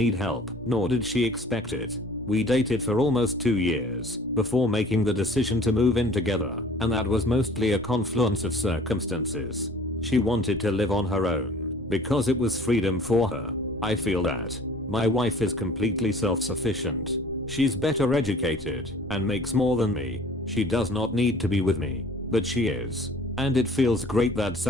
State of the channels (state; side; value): normal; both; correlation 0.49